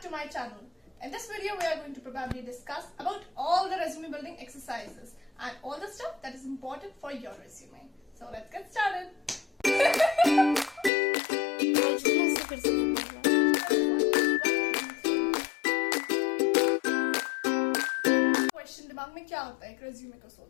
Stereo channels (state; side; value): drops out; right; at 10.9 s